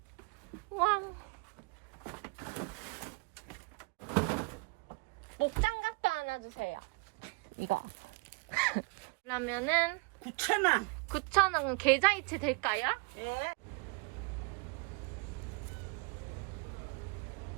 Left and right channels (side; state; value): left; quieter; 30.2 dB